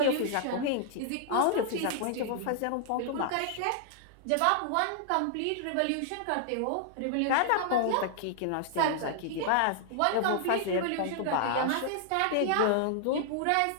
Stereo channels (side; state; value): both; different; correlation -0.01